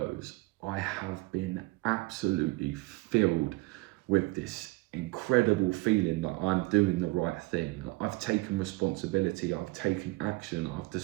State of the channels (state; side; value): quieter; left; 22.9 dB